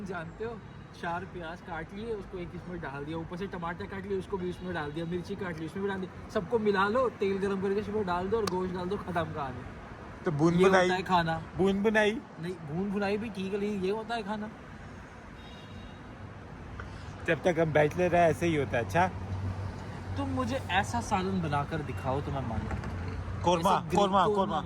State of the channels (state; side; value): identical; both; correlation 1.00